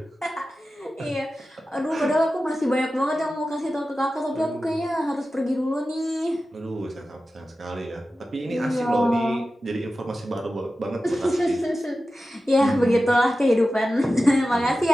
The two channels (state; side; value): normal; both; correlation 0.94